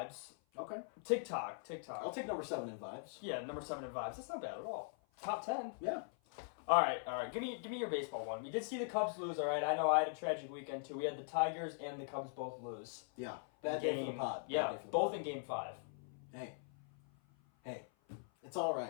Okay. TikTok. I'll take number 7 in vibes. Yeah, number 7 in vibes. That's not bad at all. Top 10. Yeah. All right. Give me your baseball one. We did see the Cubs lose. All right. I know I had a tragic weekend too. We had the Tigers and the Cubs both lose. Yeah. Bad day for the pod. Bad Yeah, day for the both pod. in Game 5. Hey. It's all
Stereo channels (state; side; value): silent; right; 50 dB below the other